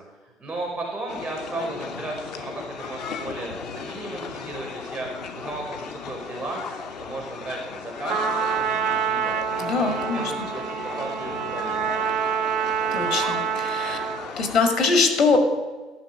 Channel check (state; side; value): normal; both; correlation 0.51